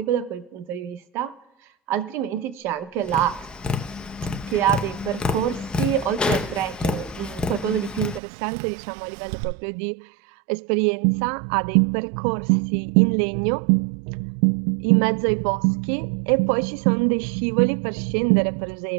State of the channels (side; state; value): left; drops out; at 8.2 s